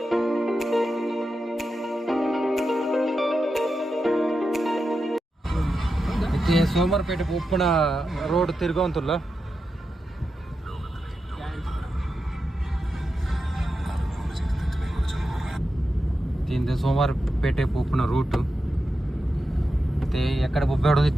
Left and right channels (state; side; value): normal; both; correlation 0.89